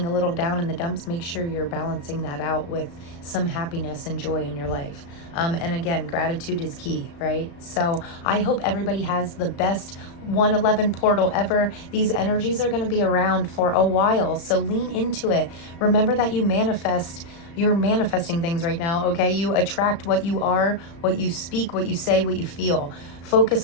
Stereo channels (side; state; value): right; late; 35 ms